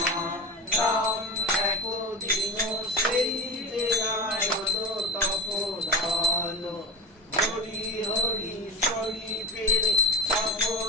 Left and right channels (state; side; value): normal; both; correlation 0.24